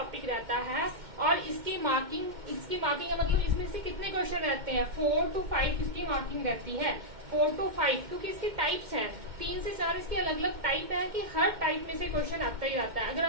रहता है। और इसकी मार्किंग का मतलब इसमें से कितने क्वेश्चन रहते हैं, 4 to 5 इसकी मार्किंग रहती है। 4 to 5 क्योंकि इसकी टाइप्स हैं, 3 से 4 इसकी अलग अलग टाइप है कि हर टाइप में से क्वेश्चन आता ही आता है। अगर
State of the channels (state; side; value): late; left; 2.1 ms